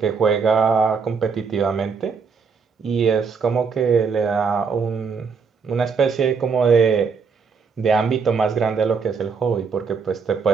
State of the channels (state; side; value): quieter; left; 5.5 dB